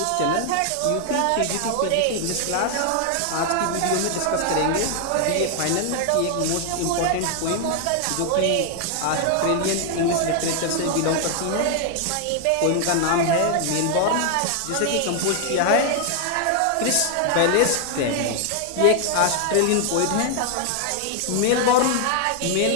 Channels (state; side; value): different; both; correlation 0.00